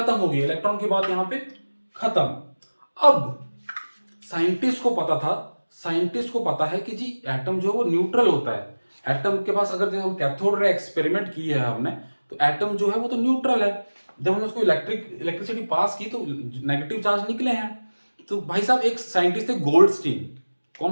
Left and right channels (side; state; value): both; inverted; correlation -1.00